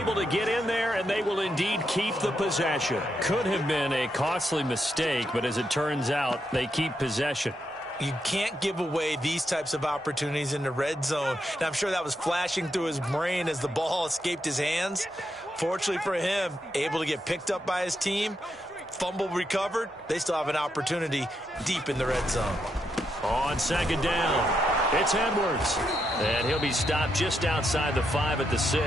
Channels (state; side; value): normal; both; correlation 0.81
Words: to get in there, and they will indeed keep the possession. Could have been a costly mistake, but as it turns out, they keep possession. You can't give away these types of opportunities in the red zone. Now, I'm sure that was flashing through his brain as the ball escaped his hands. Fortunately for him, able to get picked up by his team, fumble recovered. They still have an opportunity deep in the red zone. On 2nd down, it's Edwards. And he'll be stopped just outside the 5 at the 6.